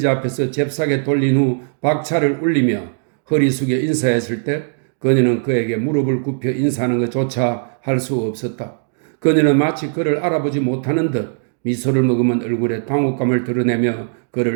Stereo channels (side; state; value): left; silent; digital silence